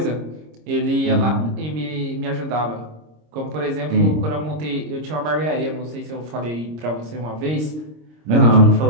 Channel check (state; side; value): late; left; 26 ms